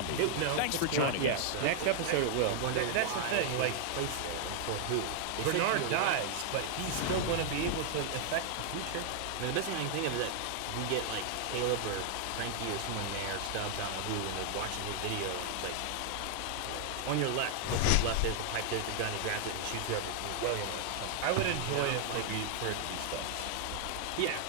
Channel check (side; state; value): both; different; correlation 0.00